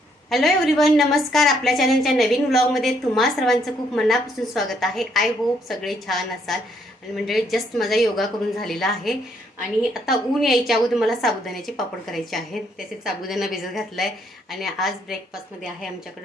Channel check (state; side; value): normal; both; correlation 0.71